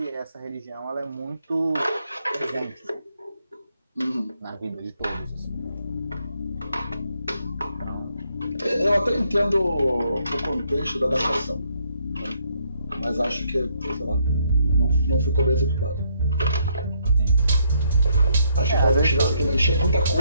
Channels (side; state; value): both; inverted; correlation -0.72